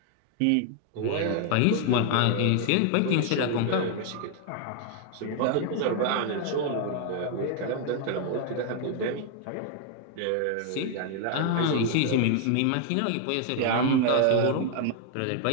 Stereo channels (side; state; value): both; different; correlation 0.00